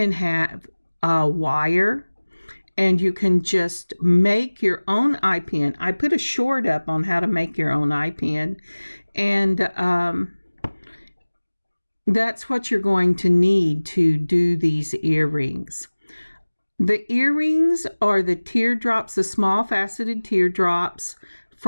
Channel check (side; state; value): both; inverted; correlation -1.00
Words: have a wire and you can just make your own eye pin. I put a short up on how to make your own eye pin, and that's what you're going to need to do these earrings. The earrings are the teardrops, the small faceted teardrops